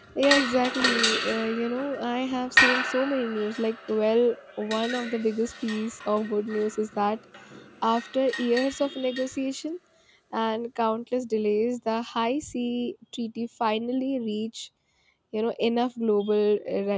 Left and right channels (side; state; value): both; identical; correlation 1.00